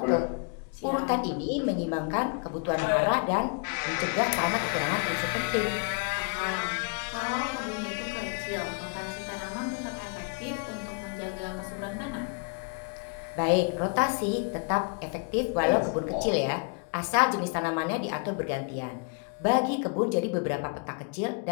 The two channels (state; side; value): quieter; right; 37.6 dB